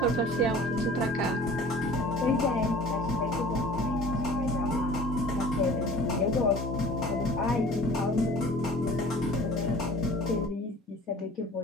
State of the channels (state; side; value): normal; both; correlation 0.46